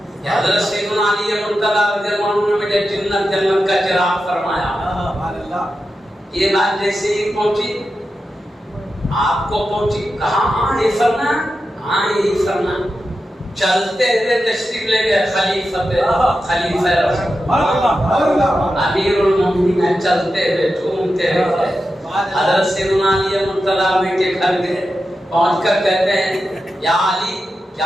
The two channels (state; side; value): normal; both; correlation 0.90